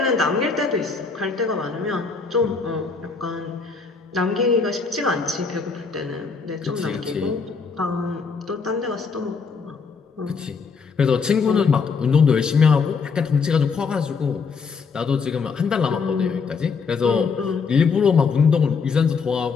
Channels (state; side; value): quieter; right; 5.2 dB